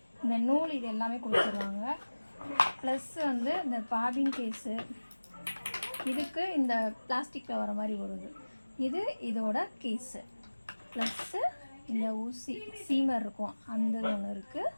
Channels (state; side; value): inverted; both; correlation -1.00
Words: இந்த நூல், இது எல்லாமே கொடுத்துருவாங்க. ப்ளஸ் வந்து இந்த பாபின் கேஸு, இதுக்கு இந்த பிளாஸ்டிக்கில் வர மாதிரி வருது, இது இதோட கேஸு. ப்ளஸ்ஸு இந்த ஊசி சீமர் இருக்கும், அந்த ஒன்று இருக்குது.